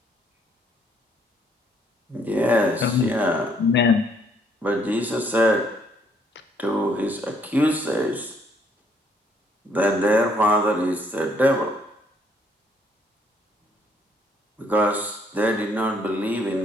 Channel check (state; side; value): normal; both; correlation 0.67